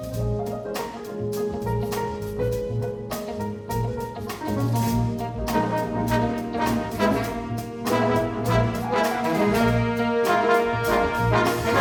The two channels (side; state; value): both; identical; correlation 1.00